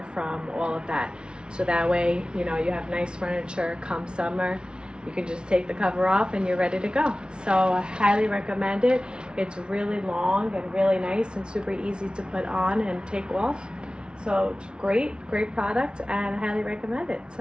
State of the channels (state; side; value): late; left; 0.055 ms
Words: from all of that, so that way you have nice furniture come summer. You can just take the cover off and you're ready to go. So I highly recommend it. It's really long and really nice and super easy to put on and take off. So it's great product, and I highly recommend it.